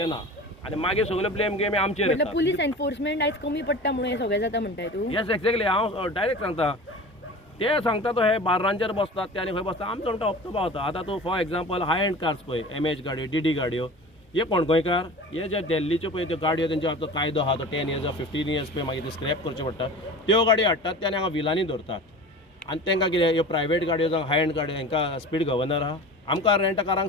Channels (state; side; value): normal; both; correlation 0.37